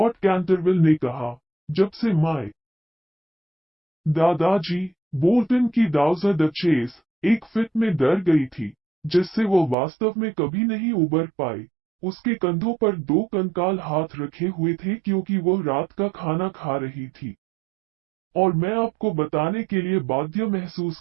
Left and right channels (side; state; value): left; drops out; at 9.8 s